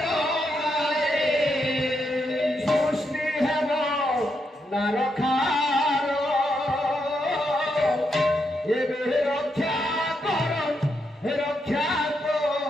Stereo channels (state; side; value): normal; both; correlation 0.81